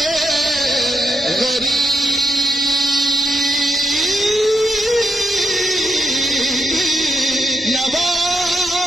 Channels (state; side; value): normal; both; correlation 0.80